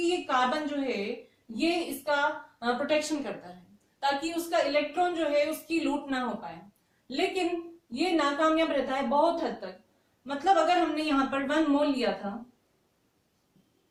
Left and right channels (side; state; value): both; identical; correlation 1.00